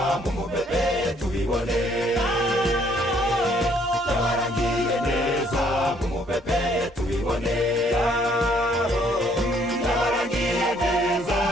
mumupepere tubibone, yabarangiye neza mumupepere tubibone, yabarangiye neza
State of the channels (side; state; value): both; normal; correlation 0.65